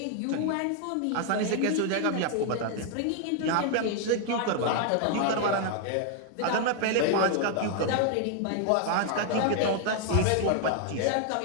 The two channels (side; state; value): both; different; correlation 0.00